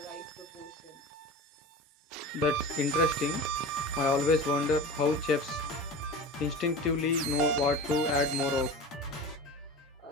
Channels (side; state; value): both; normal; correlation 0.32